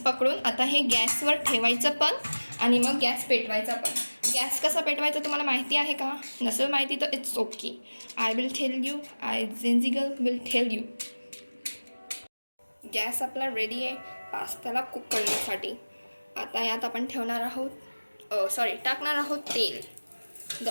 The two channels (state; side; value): inverted; both; correlation -1.00